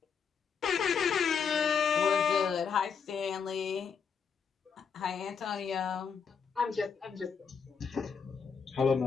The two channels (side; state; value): right; quieter; 6.3 dB